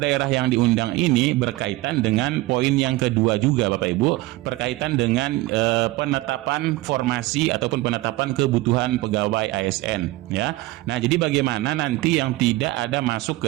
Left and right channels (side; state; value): left; quieter; 19.2 dB